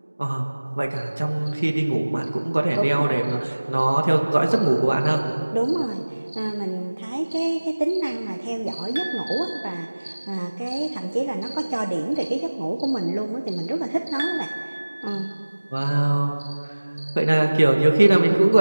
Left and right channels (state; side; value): inverted; both; correlation -1.00